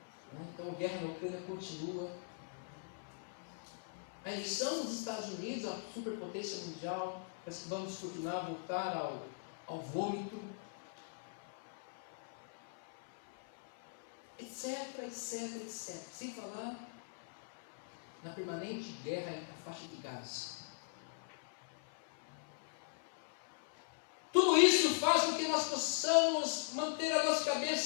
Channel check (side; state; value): right; silent; 51 dB below the other